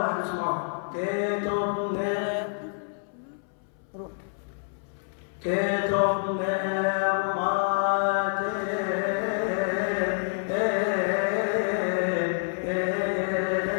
اسمعوها. كتب روح.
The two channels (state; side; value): silent; right; 60 dB below the other